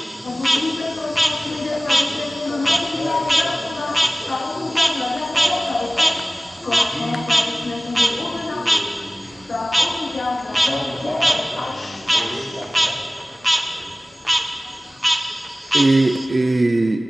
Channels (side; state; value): both; normal; correlation 0.97